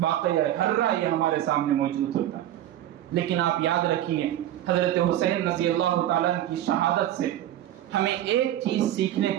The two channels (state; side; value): quieter; left; 12.5 dB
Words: ہررا یہ ہمارے سامنے موجود ہوتا ہے۔ لیکن آپ یاد رکھیے، حضرت حسین رضی اللہ تعالیٰ کی شہادت سے ہمیں ایک چیز سیکھنے